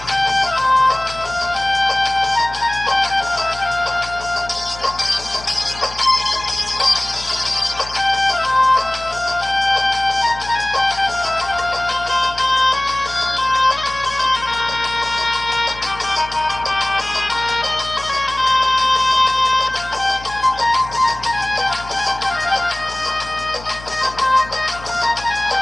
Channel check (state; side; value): noise; left; hum, 16 dB below the sound